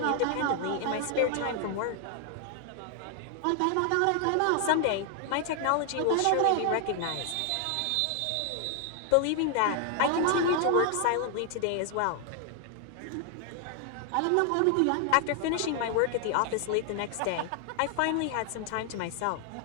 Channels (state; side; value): different; both; correlation 0.00